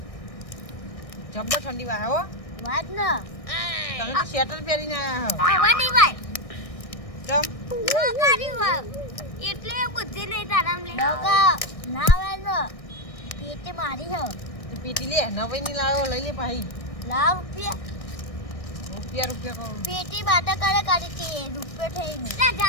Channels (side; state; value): right; late; 1.6 ms